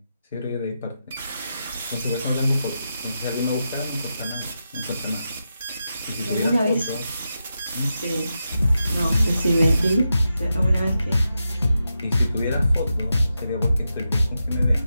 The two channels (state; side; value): inverted; both; correlation -0.88